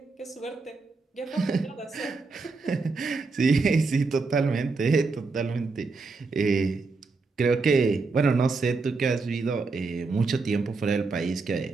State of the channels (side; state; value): left; quieter; 4.1 dB